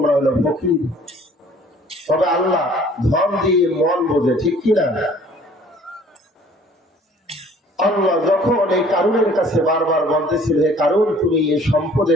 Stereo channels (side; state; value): both; normal; correlation 0.54